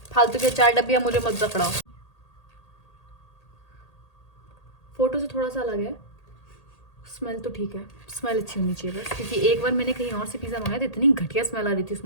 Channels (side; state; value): right; late; 1.8 ms